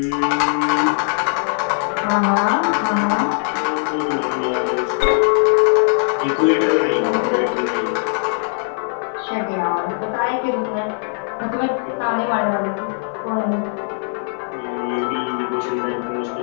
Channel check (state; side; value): silent; right; 60 dB below the other